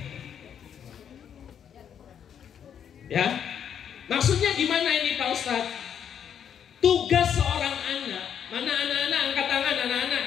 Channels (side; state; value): right; quieter; 8.6 dB